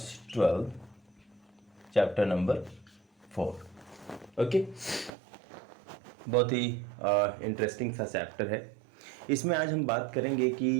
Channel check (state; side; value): drops out; left; at 5.1 s